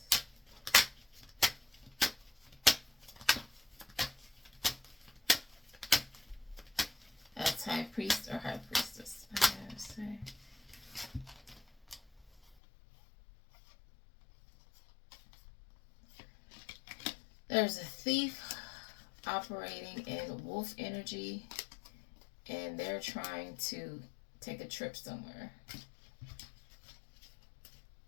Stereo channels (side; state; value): right; drops out; at 12.6 s